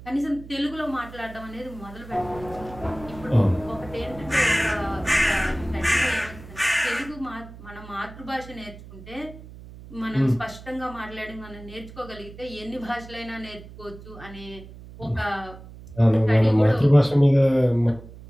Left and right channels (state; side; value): noise; right; hum, 17 dB below the sound